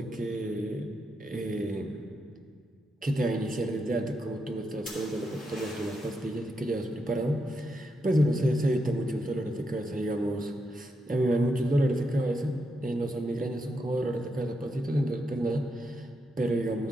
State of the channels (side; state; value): both; normal; correlation 0.83